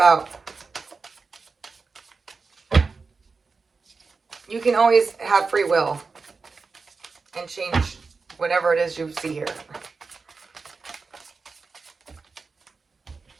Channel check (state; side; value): quieter; left; 4.5 dB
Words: you can always have free will and change whatever it is you see here.